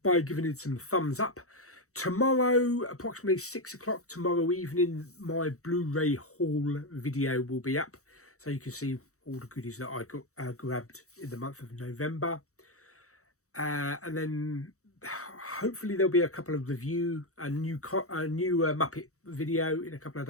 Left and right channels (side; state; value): right; late; 0.65 ms